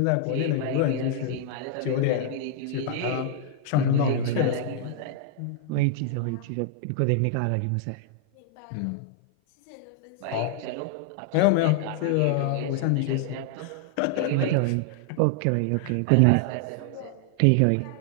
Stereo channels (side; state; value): both; different; correlation 0.00